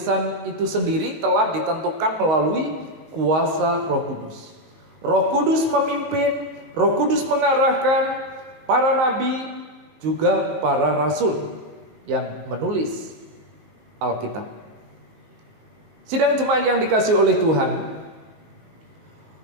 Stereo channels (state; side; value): late; left; 19 ms